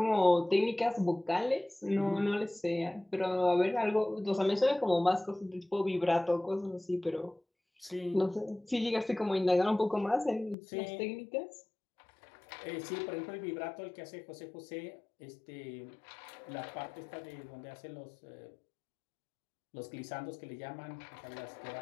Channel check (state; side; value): drops out; right; at 10.6 s